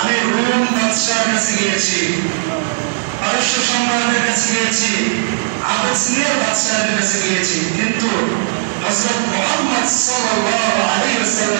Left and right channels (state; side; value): silent; left; digital silence